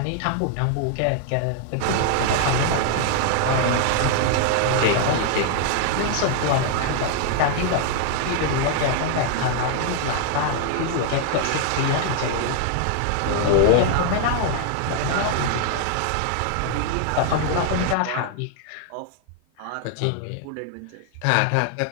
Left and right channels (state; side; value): different; both; correlation 0.00